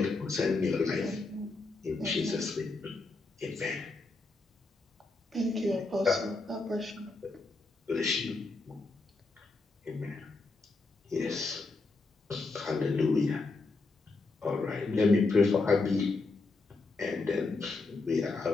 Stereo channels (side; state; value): right; quieter; 3.6 dB